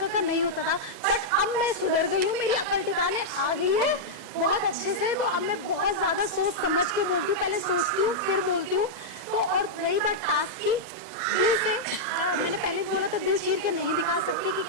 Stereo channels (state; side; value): late; right; 2.0 ms